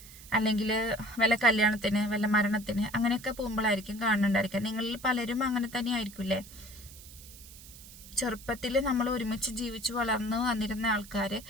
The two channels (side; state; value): right; noise; hiss, 18 dB below the sound